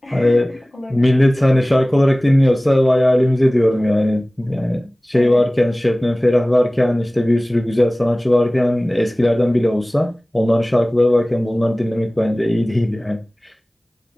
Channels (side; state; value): both; normal; correlation 0.98